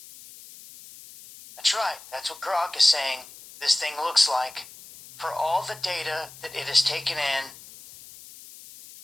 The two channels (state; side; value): noise; left; hiss, 18 dB below the sound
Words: That's right, that's what Grok is saying this thing looks like for all the data that it has taken in